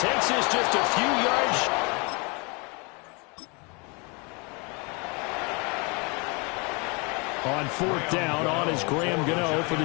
takes this just a few yards. On 4th down, on is Graham Gano for the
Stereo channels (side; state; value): right; quieter; 30.2 dB